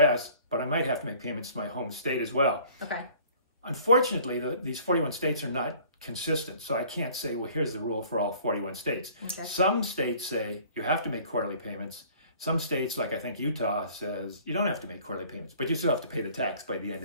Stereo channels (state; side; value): inverted; both; correlation -0.52